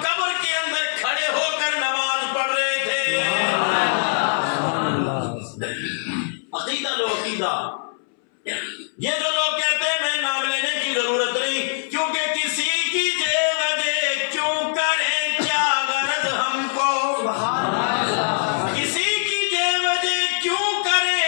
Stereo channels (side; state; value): right; silent; 63 dB below the other